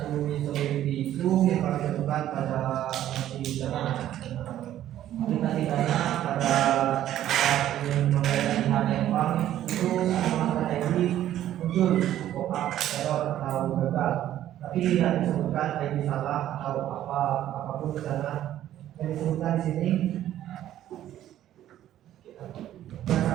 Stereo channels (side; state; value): left; quieter; 12.3 dB